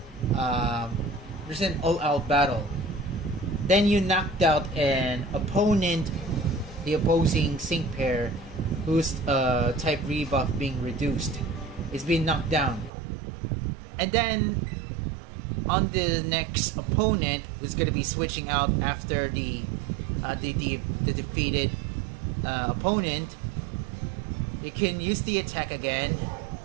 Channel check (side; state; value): left; drops out; at 12.9 s